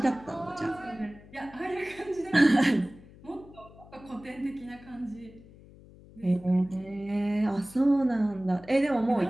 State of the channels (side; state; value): left; noise; hum, 21 dB below the sound